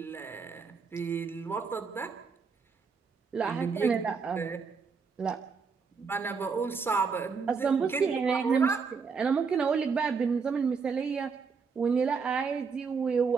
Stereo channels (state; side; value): quieter; left; 5.4 dB